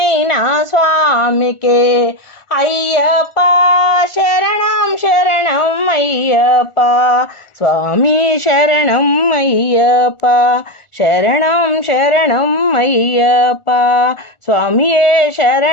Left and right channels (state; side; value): late; right; 1.4 ms